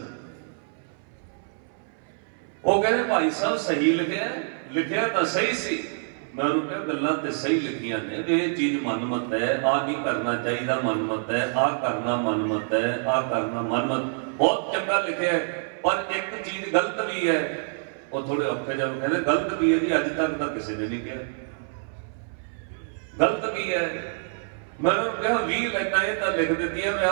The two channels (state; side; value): silent; left; 60 dB below the other